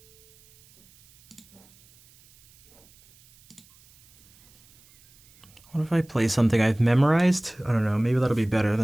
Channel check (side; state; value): right; noise; hiss, 29 dB below the sound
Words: What if I play something I've memorized? I don't know, maybe that'll be better